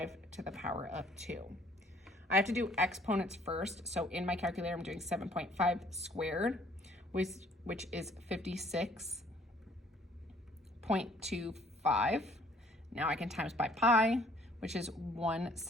to the power of 2. I have to do exponents first. So in my calculator, I'm doing 7.5 squared, which is 56.25. Now I can times by pi, which is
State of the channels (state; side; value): normal; both; correlation 0.59